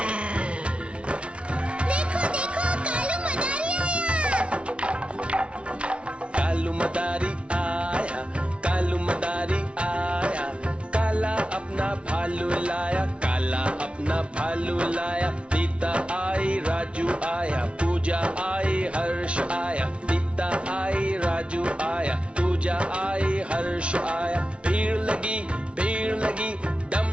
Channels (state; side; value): late; left; 0.060 ms